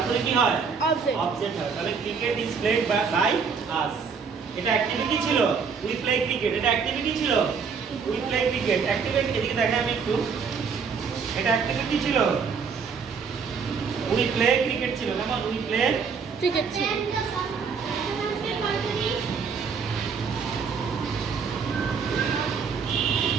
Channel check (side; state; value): left; quieter; 5.8 dB